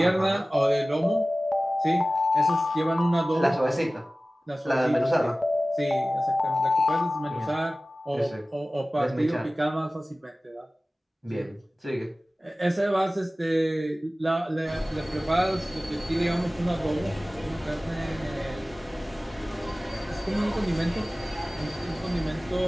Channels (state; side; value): normal; both; correlation 0.97